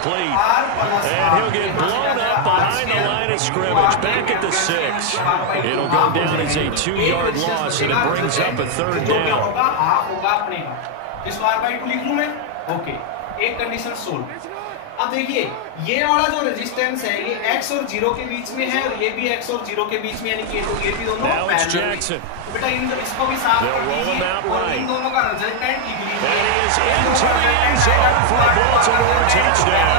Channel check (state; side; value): different; both; correlation 0.00